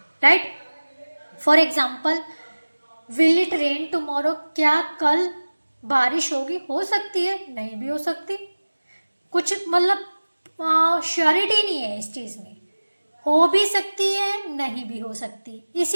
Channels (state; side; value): inverted; both; correlation -1.00